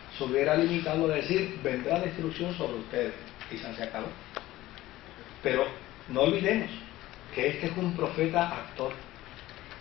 se hubiera limitado a decir: vendrá destrucción sobre ustedes, quizás se acabó. Pero no olvidemos que este es un profeta actor,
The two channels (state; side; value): quieter; right; 16.5 dB